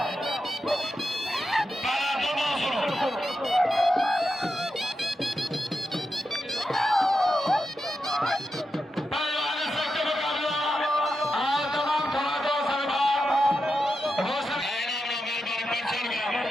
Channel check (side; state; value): both; normal; correlation 0.88